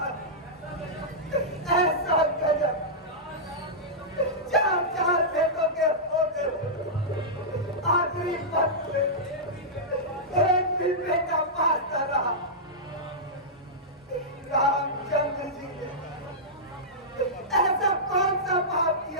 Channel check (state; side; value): normal; both; correlation -0.13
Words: ऐसा गजब, चार चार बेटों के होते आखिरी वक्त में एक भी बेटा पाता रहा। रामचंद्र जी ने ऐसा कौन सा पाप